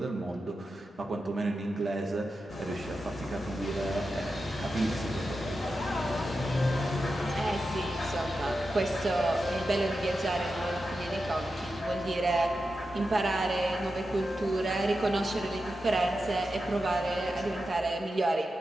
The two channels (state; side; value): normal; both; correlation 0.90